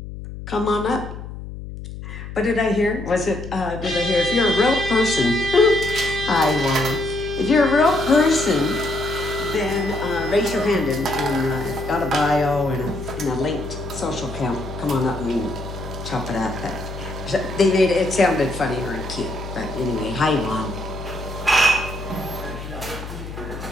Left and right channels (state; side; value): noise; left; hum, 10 dB below the sound